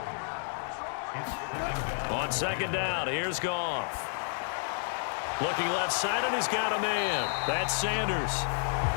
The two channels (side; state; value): right; silent; digital silence